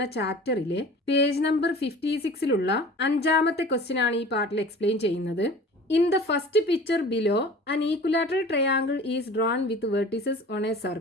ചാപ്റ്ററിലെ page number 56ലുള്ള അഞ്ചാമത്തെ ക്വസ്റ്റ്യൻ ആണ് ഈ പാർട്ടിൽ എക്സ്പ്ലെയിൻ ചെയ്യുന്നത്. In the first picture below an equilateral triangle is drawn with vertices on a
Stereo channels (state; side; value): normal; both; correlation 0.42